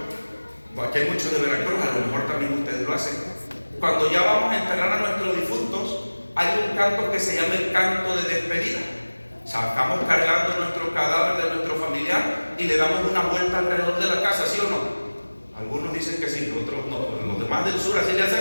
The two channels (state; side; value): inverted; both; correlation -1.00